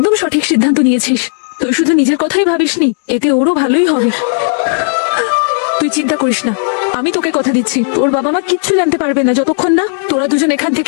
সঠিক সিদ্ধান্ত নিয়েছিস। তুই শুধু নিজের কথাই ভাবিসনি, এতে ওরও ভালোই হবে। তুই চিন্তা করিস না, আমি তোকে কথা দিচ্ছি, তোর বাবা মা কিচ্ছু জানতে পারবে না যতক্ষণ না তোরা দুজন এখান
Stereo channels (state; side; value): silent; right; digital silence